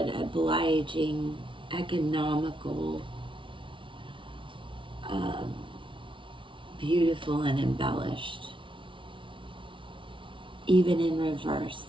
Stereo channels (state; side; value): late; left; 0.25 ms